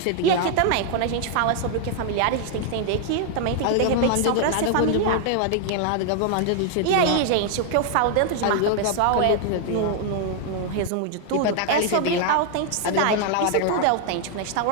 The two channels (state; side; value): different; both; correlation 0.00